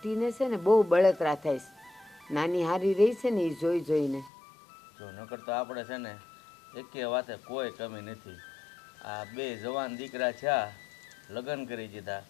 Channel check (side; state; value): right; drops out; at 4.3 s